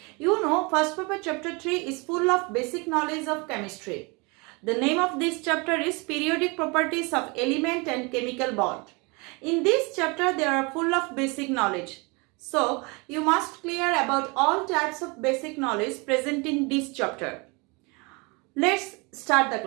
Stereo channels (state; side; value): quieter; left; 28.8 dB